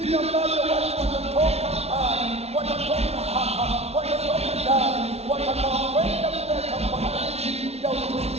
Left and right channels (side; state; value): left; late; 0.31 ms